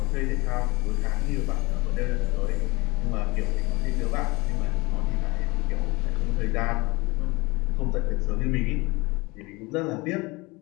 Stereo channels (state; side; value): quieter; right; 24.1 dB